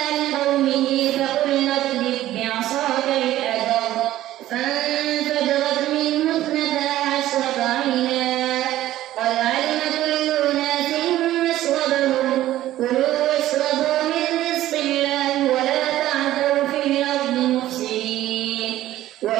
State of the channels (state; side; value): quieter; left; 14.2 dB